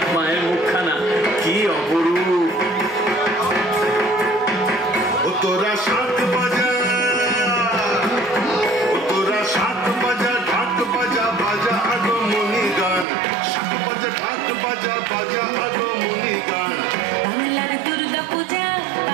माয়ের মুখখানা কি অপরূপ তোরা শাক বাজা ঢাক বাজা বাজা আগমনী গান শাক বাজা ঢাক বাজা বাজা আগমনী গান বাংলার দুর্গা পূজা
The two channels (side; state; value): left; drops out; at 13.1 s